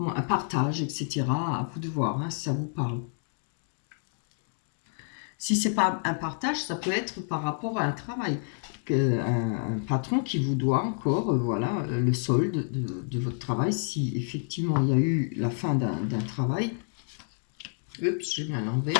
partage, etc. À vous de voir, hein, si ça vous parle. Si c'est pas un partage, ça peut être par rapport à un travail. Un patron qui vous doit encore, voilà, le solde de votre travail, si effectivement il y a eu la fin d'un travail. Oups, j'ai mis à l'envers.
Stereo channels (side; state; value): right; silent; 59 dB below the other